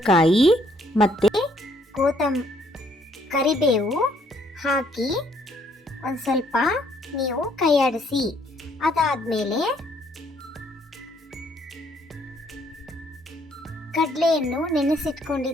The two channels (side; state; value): both; normal; correlation 0.67